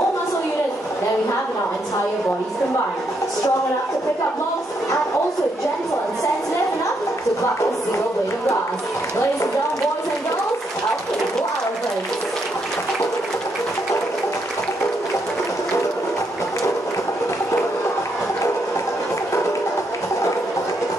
muscle units than we have in our entire bodies combined. Strong enough to pick up logs, and also gentle and sensitive enough to pluck a single blade of grass. Ladies and gentlemen, boys and girls, our playful elephants.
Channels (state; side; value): normal; both; correlation 0.77